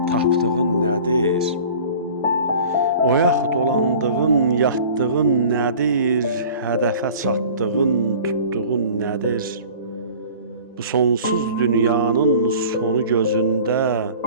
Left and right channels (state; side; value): inverted; both; correlation -0.44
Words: tapdığın nədir? Oyaq dolandığın, yatdığın nədir? Hədəfə çatdığın, tutduğun nədir? Bu sonsuz dünyanın sonu gözündə